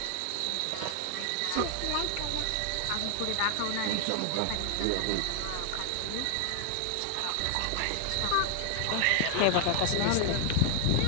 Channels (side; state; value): both; different; correlation 0.00